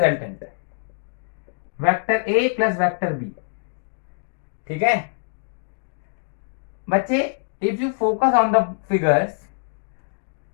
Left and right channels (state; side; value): silent; right; digital silence